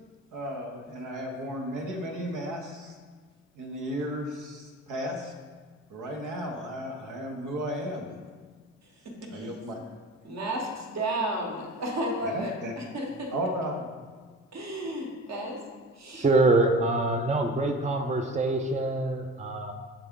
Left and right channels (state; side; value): normal; both; correlation 0.36